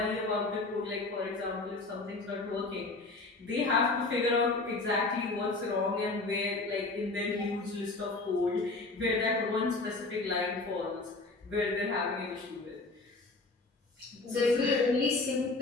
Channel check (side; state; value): right; quieter; 3.4 dB